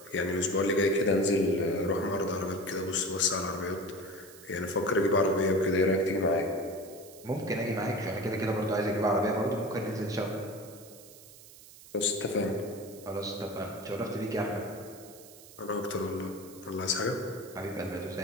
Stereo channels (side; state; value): right; noise; hiss, 19 dB below the sound